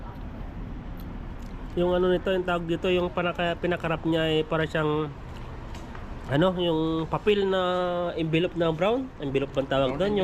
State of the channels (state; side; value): identical; both; correlation 1.00